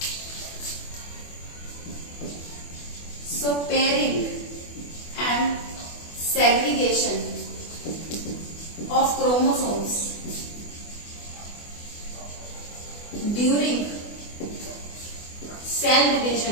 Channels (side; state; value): right; late; 24 ms